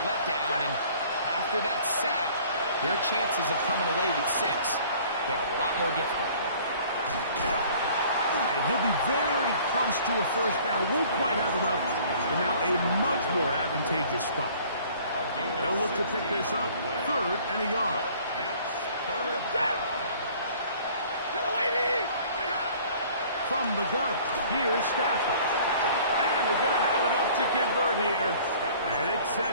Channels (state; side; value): inverted; both; correlation -0.52